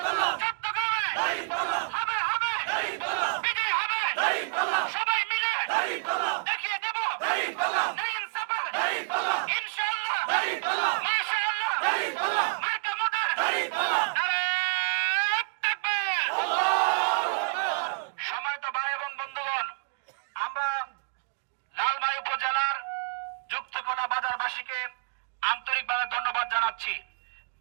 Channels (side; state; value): left; silent; digital silence